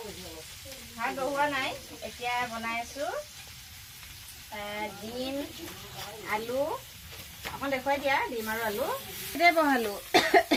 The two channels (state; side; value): identical; both; correlation 1.00